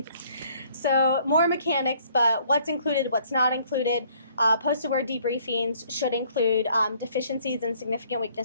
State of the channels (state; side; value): inverted; both; correlation -0.61